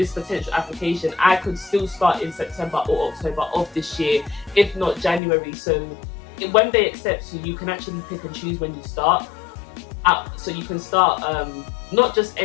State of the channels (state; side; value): drops out; right; at 5.2 s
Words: potential application, I could still start in September or October of this year, if not January. So when they accept you, you can actually pick and choose when you start. So you can start not just